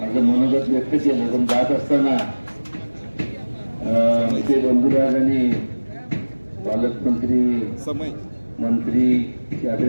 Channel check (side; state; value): both; inverted; correlation -1.00